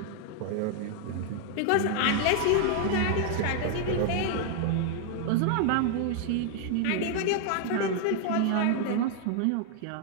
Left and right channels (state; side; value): different; both; correlation 0.00